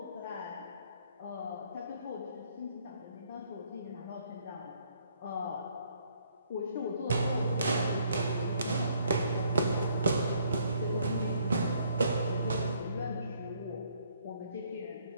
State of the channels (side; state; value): both; inverted; correlation -0.66